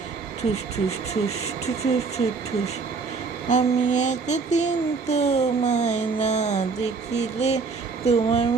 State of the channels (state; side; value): quieter; left; 4.7 dB